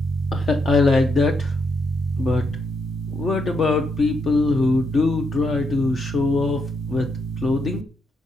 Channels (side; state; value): both; normal; correlation 0.79